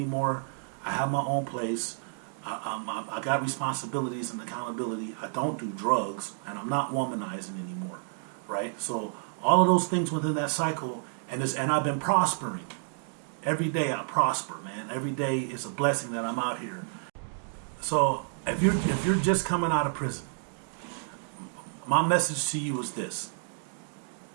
I have my own place. I got responsibilities and accountability. I don't do drugs, and I'm not womanizing anymore. Right? So all of those things within that cycle, and I've been prospering. Every day I prosper, man. Every day is a blessing that I'm out here. So if you're just coming out of prison, my message to you is this:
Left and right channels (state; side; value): silent; left; 58 dB below the other